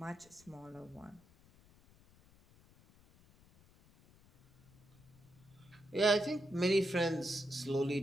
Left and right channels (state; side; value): noise; left; rumble, 27 dB below the sound